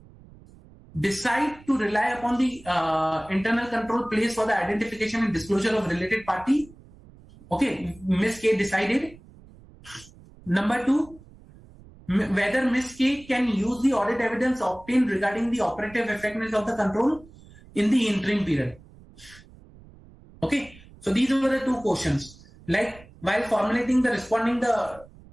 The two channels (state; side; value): noise; right; rumble, 23 dB below the sound